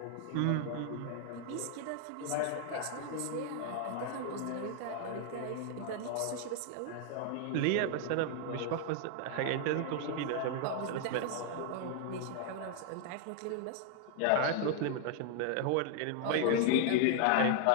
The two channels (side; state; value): both; different; correlation 0.00